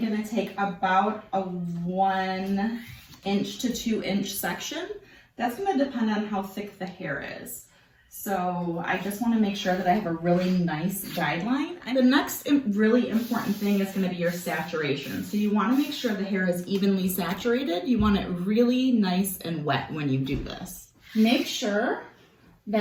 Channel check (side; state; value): both; identical; correlation 1.00